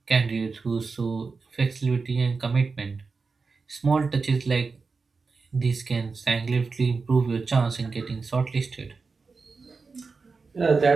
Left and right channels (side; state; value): left; quieter; 4.5 dB